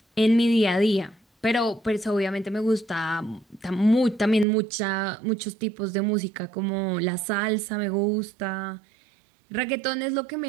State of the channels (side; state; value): left; drops out; at 4.5 s